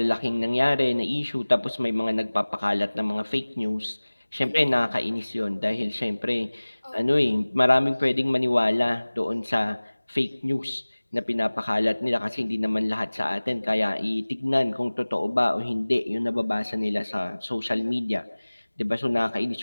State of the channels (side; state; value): both; inverted; correlation -1.00